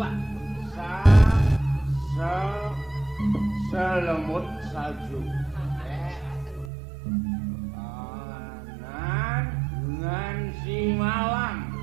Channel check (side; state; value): left; drops out; at 6.7 s